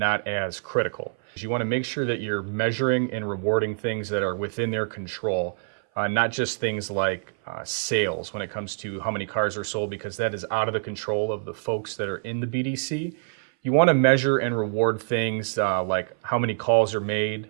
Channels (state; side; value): silent; left; 59 dB below the other